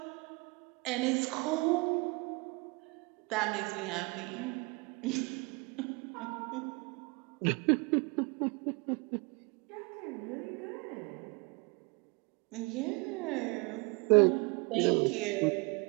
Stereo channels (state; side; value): quieter; left; 28.6 dB